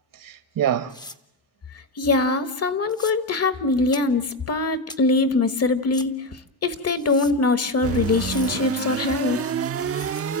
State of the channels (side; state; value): both; normal; correlation 0.11